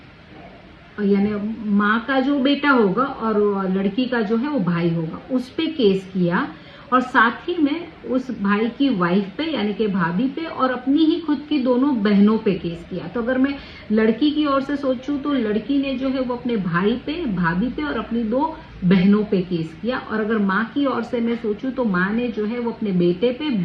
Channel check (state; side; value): identical; both; correlation 1.00